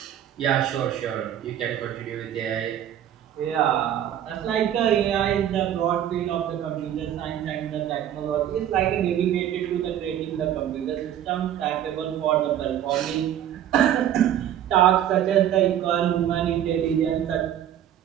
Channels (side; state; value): left; quieter; 10.8 dB